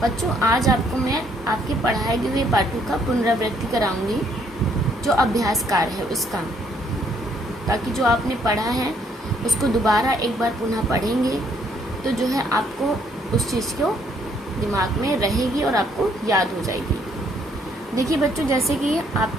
बच्चों। आज आपको मैं आपके पढ़ाए हुए पाठों का पुनरावृत्ति कराऊंगी, जो अभ्यास कार्य है उसका, ताकि जो आपने पढ़ा है उसको दोबारा एक बार पुनः पढ़ेंगे तो जो है आपको उस चीज़ को दिमाग में रहेगी और आपको याद हो जाएगी। देखिए बच्चों, जैसे कि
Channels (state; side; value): normal; both; correlation 0.67